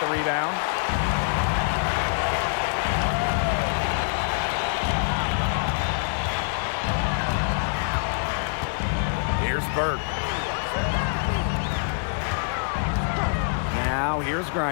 the rebound. Here's Burke. Now here's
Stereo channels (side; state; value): right; silent; digital silence